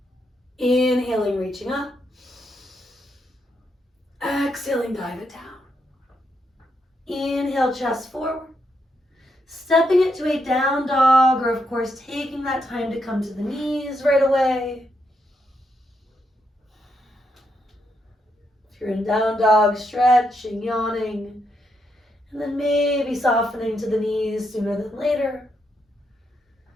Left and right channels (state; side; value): normal; both; correlation 0.80